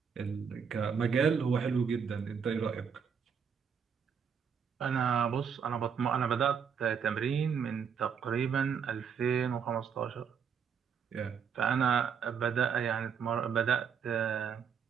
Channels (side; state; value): left; quieter; 6.9 dB